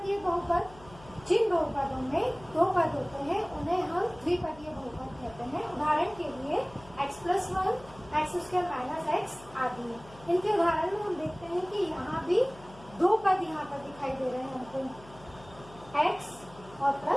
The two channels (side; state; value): left; noise; hum, 21 dB below the sound